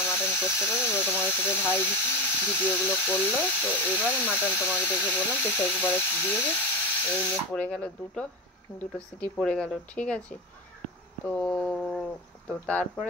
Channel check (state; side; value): normal; both; correlation 0.21